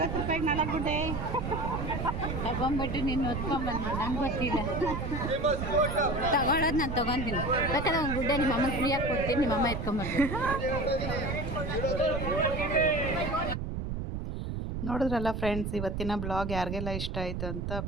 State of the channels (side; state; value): right; noise; rumble, 4 dB below the sound